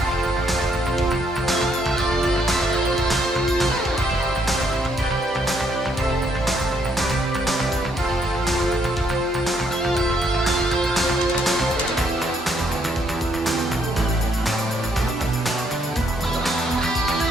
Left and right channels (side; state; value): both; normal; correlation 0.71